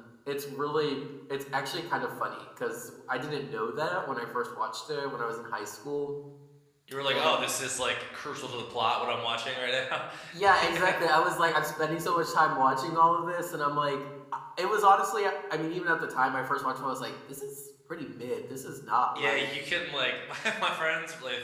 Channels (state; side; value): identical; both; correlation 1.00